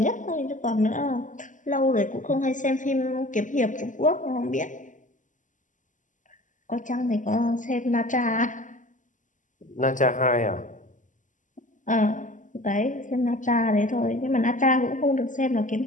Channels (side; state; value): right; late; 0.37 ms